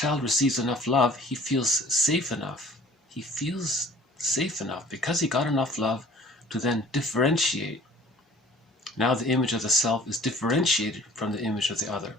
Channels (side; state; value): both; normal; correlation 0.50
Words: receives enough love, he feels safe enough. He feels safe enough because he got enough love to then differentiate. Now the image of the self is differentiated from the image of the other.